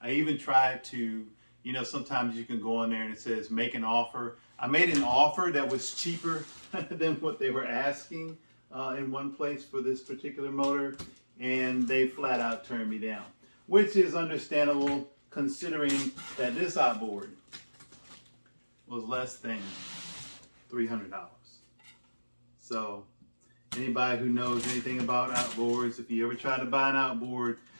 I even tried to, you know, sometimes you can go in there and it says make an offer. I made an offer that was cheaper than what they were asking in one place for this particular motor, and they flat out turned me down, which is understandable considering that this outboard was less than $300. So anybody who knows anything about outboards, if you ever try to buy an outboard,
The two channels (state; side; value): inverted; both; correlation -1.00